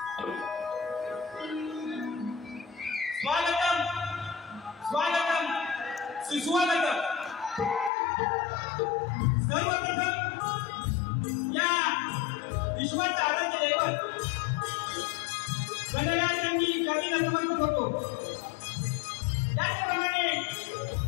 स्वागतम स्वागतम सुस्वागतम सर्वप्रथम या विश्वाचा आराध्य दैवत गणराजांनी कधी नतमस्तक होतो। त्याचप्रमाणे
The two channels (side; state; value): right; drops out; at 7.9 s